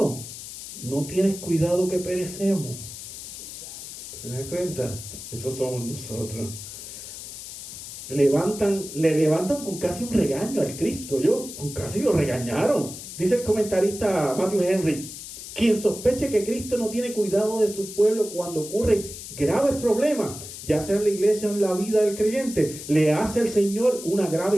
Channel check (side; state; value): left; noise; hiss, 11 dB below the sound